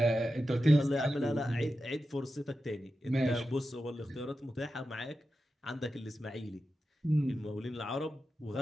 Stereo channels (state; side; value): normal; both; correlation 0.91